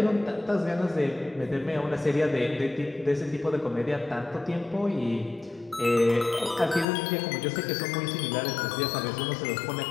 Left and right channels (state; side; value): drops out; right; at 6.9 s